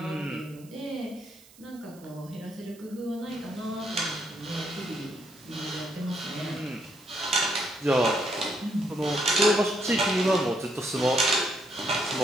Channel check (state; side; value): noise; right; hiss, 24 dB below the sound